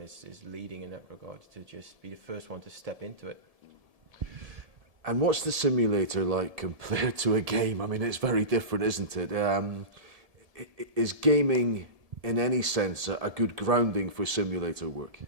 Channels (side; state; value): left; late; 1.7 ms